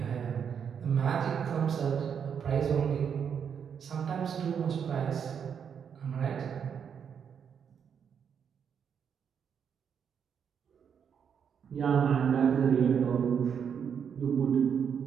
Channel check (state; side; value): quieter; left; 7.5 dB